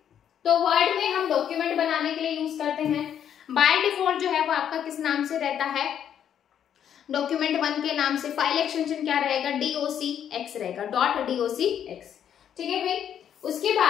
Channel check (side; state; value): right; quieter; 9.3 dB